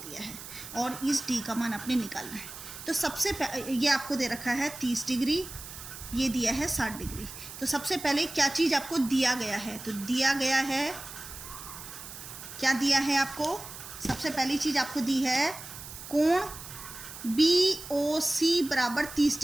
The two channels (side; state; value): right; noise; hiss, 12 dB below the sound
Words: है और इस D का मान आपने निकालना है। तो सबसे ये आपको दे रखा है 30 डिग्री, ये दिया है 60 डिग्री। तो सबसे पहले क्या चीज़ आपको दिया गया है? तो दिया गया है, क्या दिया है आपको? सबसे पहली चीज़ आपको दी है कोण BOC बराबर 30